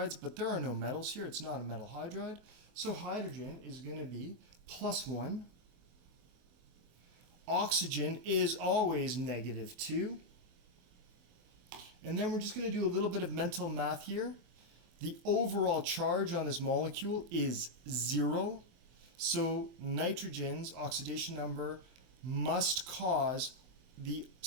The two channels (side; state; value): left; late; 23 ms